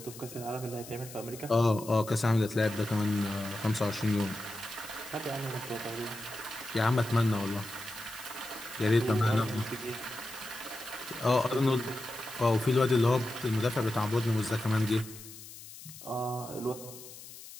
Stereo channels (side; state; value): left; noise; hiss, 15 dB below the sound